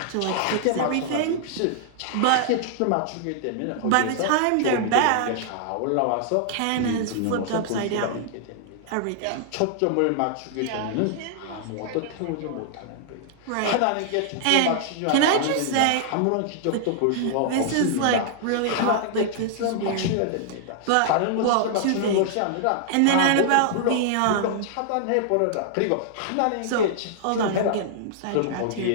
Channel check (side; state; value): both; different; correlation -0.01